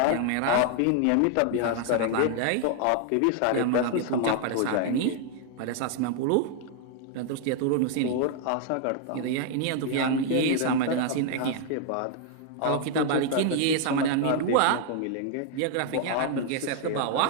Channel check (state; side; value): different; both; correlation 0.00